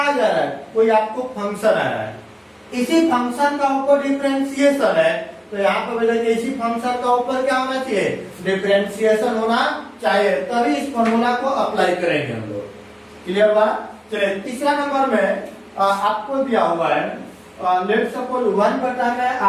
जा रहा है, कोई आपको फंक्शन आ रहा है, इसी फंक्शन का ऊपर डिफरेंशिएशन है तो यहाँ पर देखिए इसी फंक्शन का ऊपर क्या होना चाहिए डिफरेंशिएशन होना चाहिए, तभी इस फॉर्मूला को अप्लाई करेंगे हम लोग। क्लियर हुआ। चलिए तीसरा नंबर में आपको दिया हुआ है लेट सपोज 1 बटा में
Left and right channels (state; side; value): identical; both; correlation 1.00